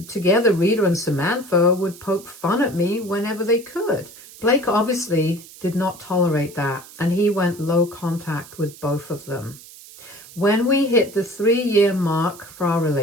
together Rita and Samantha would poke fun at me whenever they could. Blake obviously did not tolerate that, and he went low contact with both of them. When we hit the 3-year mark for our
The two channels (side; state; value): right; noise; hiss, 19 dB below the sound